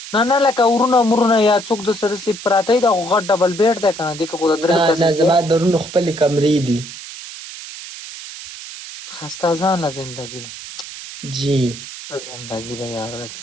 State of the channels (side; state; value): right; noise; hiss, 12 dB below the sound